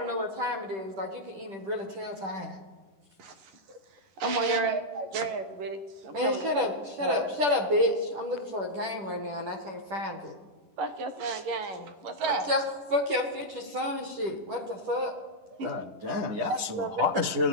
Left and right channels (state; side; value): late; left; 10 ms